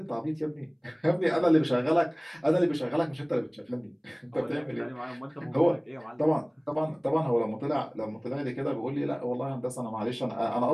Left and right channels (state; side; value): identical; both; correlation 1.00